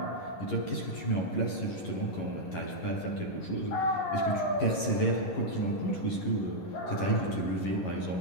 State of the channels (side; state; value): right; late; 11 ms